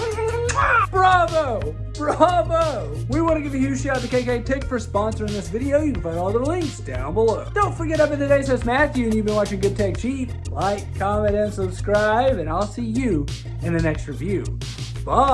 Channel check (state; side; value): identical; both; correlation 1.00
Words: Bravo! Bravo! We want to give a huge shout out to KKTICK for sponsoring this video. You can find all the links down below. Don't forget, I've been today's host Matthew, and you've been watching Good Tech Cheap. Like, comment, and subscribe, and I'll see you in the next review.